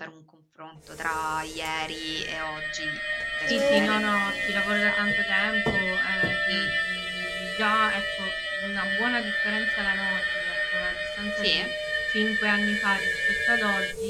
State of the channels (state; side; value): identical; both; correlation 1.00